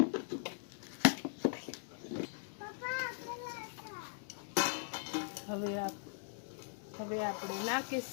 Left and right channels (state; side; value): silent; right; digital silence